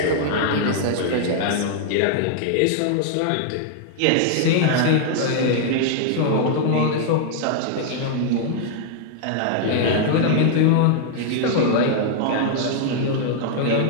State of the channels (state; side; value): different; both; correlation 0.00